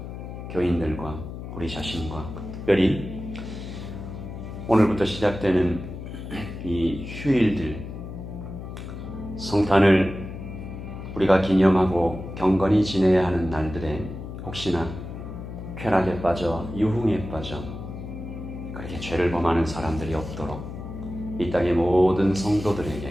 교인들과 우리 자신과 특별히 오늘부터 시작되는 이 휴일들, 성탄을 우리가 기념하고 경건히 지내야 하는 날들에 혹시나 쾌락에 빠져 유흥에 빠져 그렇게 죄를 범하는 사람들이 없도록 이 땅의 모든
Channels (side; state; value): left; noise; hum, 9 dB below the sound